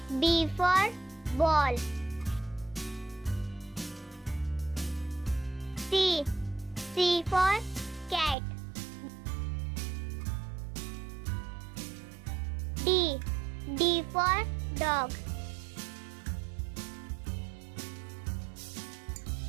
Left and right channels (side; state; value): left; drops out; at 8.3 s